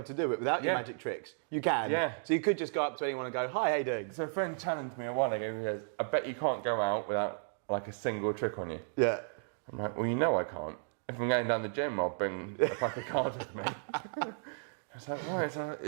to do it without your magic tricks? You can. Yeah. So you could just go up to anyone and go, "Hi, how you doing?" So a friend challenged me a while ago. He goes, "I bet you can't go out without like a single trick on you." Yeah. I'm like, "Well, you know I can't. If I'm going down the gym, I'll bring a pack of cards with me." It's like, right,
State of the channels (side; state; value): left; silent; digital silence